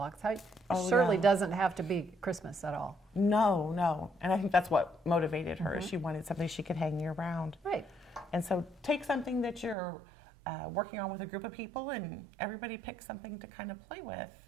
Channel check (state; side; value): drops out; left; at 9.8 s